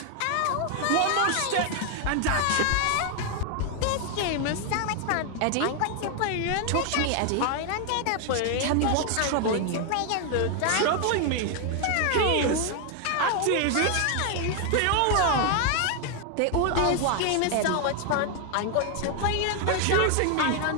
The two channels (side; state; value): both; different; correlation 0.00